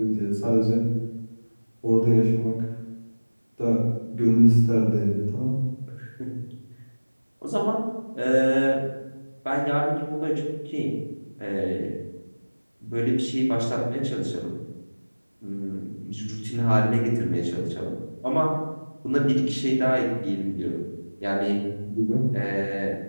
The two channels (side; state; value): both; inverted; correlation -1.00